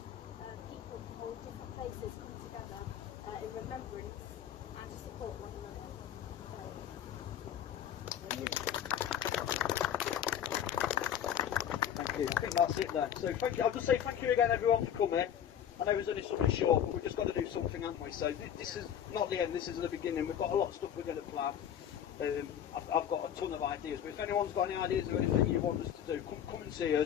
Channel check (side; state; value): right; quieter; 9.4 dB